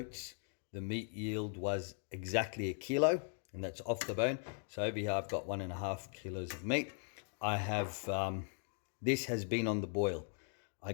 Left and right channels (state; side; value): silent; right; 52 dB below the other